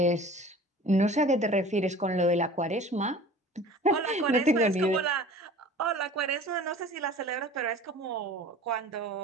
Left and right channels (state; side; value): normal; both; correlation 0.43